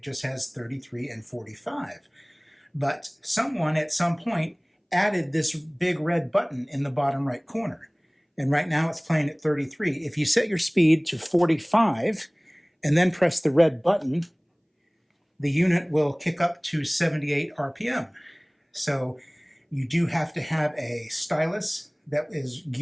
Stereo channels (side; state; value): both; identical; correlation 1.00